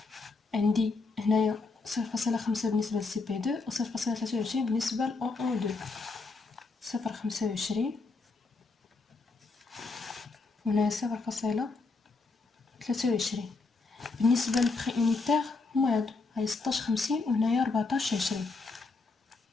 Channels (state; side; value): quieter; right; 3.9 dB